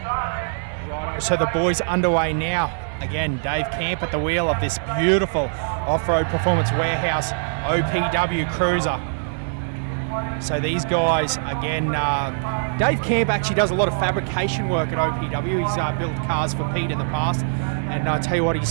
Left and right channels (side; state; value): left; silent; 64 dB below the other